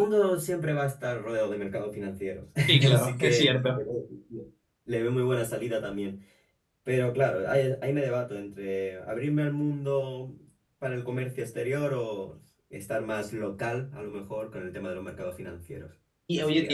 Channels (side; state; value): both; identical; correlation 1.00